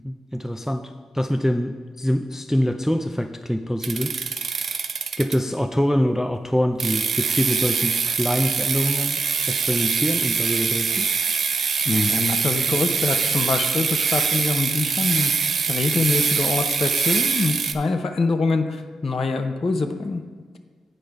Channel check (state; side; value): normal; both; correlation 0.86